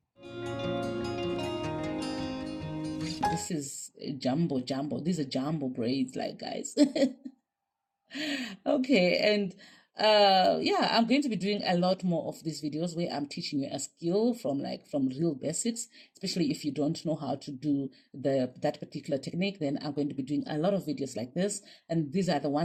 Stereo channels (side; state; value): both; identical; correlation 1.00